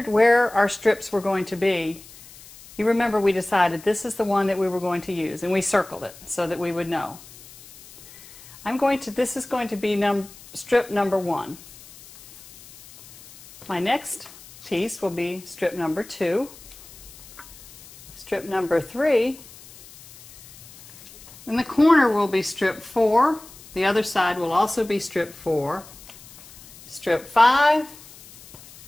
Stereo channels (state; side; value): noise; left; hiss, 20 dB below the sound